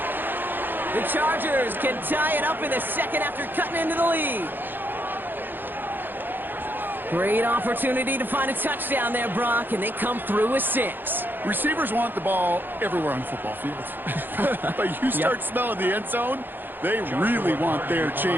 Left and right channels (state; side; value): late; left; 0.094 ms